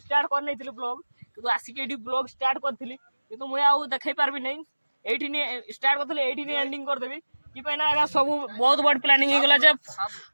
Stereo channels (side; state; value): both; inverted; correlation -1.00